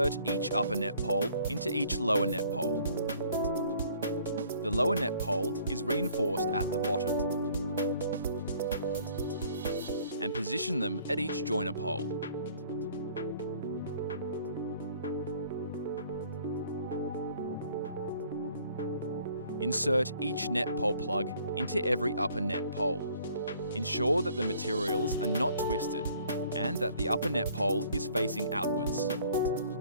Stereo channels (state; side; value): inverted; both; correlation -0.57